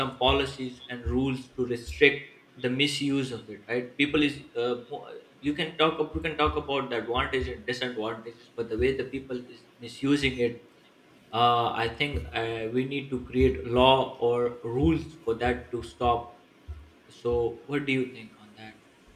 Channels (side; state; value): both; identical; correlation 1.00